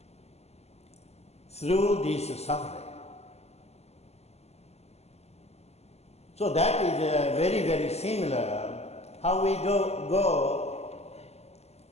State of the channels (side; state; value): right; late; 0.30 ms